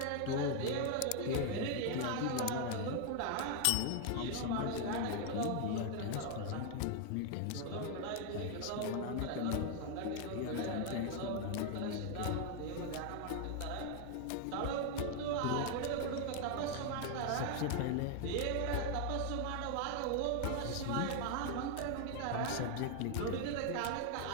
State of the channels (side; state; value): both; different; correlation 0.00